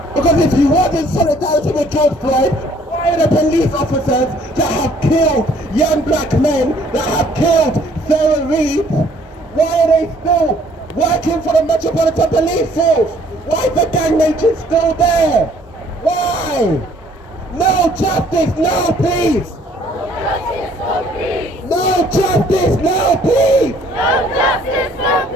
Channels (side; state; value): both; normal; correlation 0.60